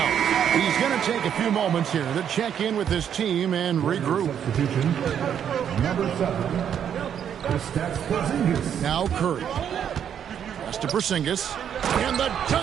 He's going to take a few moments here to check in with his team and regroup. Substitution. Number 7. Porzingis. Now Curry. Pass to Porzingis. And the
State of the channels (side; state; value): left; quieter; 8.8 dB